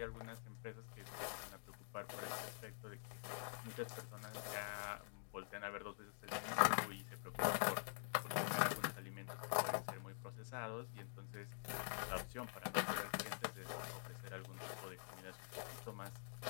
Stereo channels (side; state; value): right; silent; digital silence